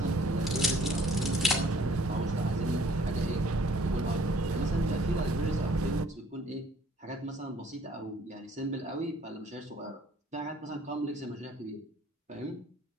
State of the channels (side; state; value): both; normal; correlation 0.58